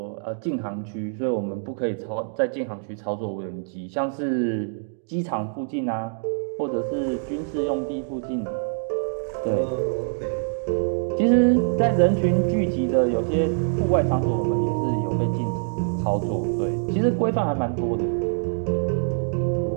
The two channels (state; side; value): silent; left; digital silence